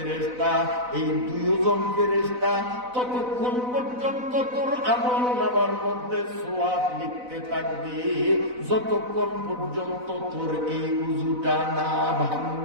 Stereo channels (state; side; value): late; left; 4.0 ms